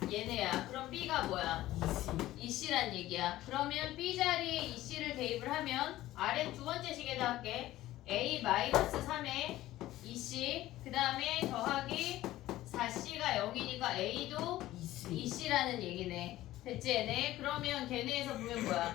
얘네야. 그럼 B가 뭐야? 2C란 얘기야. 그러면 B 자리에 2C를 대입을 하면 아래 두 번째 식에다 할게. A 마이너스 3에 2C 그 다음에 더하기 4C가 0이니까 A도 2C라는 얘기네. 됐지 얘네? 그러면 걔네에서 보면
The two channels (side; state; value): right; quieter; 15.4 dB